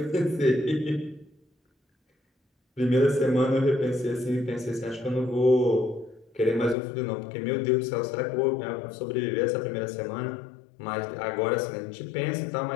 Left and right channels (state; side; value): drops out; right; at 6.8 s